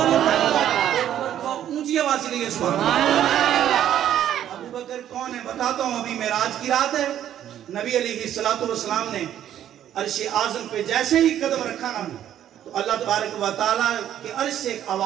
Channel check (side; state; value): left; quieter; 10.9 dB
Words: اونچی آواز سے کہیے سبحان اللہ. ابو بکر کون ہے بتاتا ہوں. ابھی معراج کی رات ہے, نبی علیہ الصلوۃ والسلام نے عرش اعظم پہ جیسے ہی قدم رکھا نا تو اللہ تبارک و تعالیٰ کے عرش سے ایک